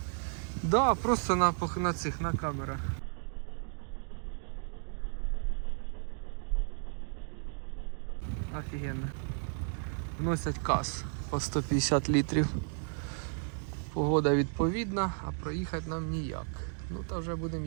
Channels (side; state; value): left; silent; 55 dB below the other